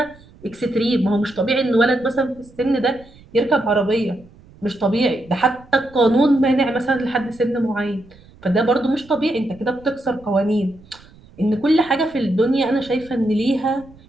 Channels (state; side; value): noise; right; rumble, 25 dB below the sound